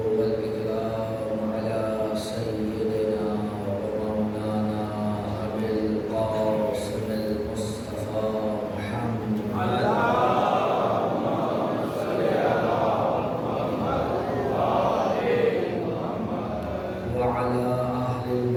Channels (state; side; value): identical; both; correlation 1.00